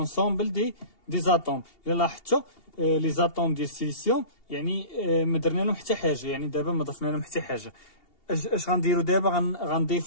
دي زاتوم. الا لاحظتوا لي زاتوم ديال السيليسيوم يعني ما درنا لهم حتى حاجه، يعني دابا ما ضفنا لهم حتى حاجه. اش غنديروا دابا؟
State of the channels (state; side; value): late; right; 2.8 ms